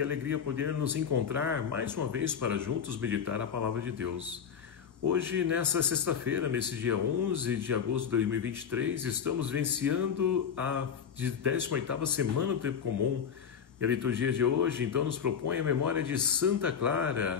alegria poder nos encontrar mais uma vez para juntos meditar a Palavra de Deus. Hoje, nessa sexta-feira, nesse dia 11 de agosto de 2023, estamos vivenciando a 18ª semana do Tempo Comum. E a liturgia de hoje, então, nos propõe a memória de Santa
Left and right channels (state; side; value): quieter; right; 7.4 dB